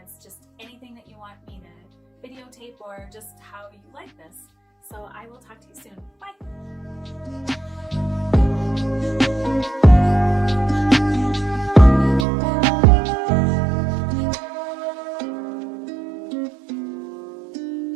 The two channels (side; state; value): left; drops out; at 12.2 s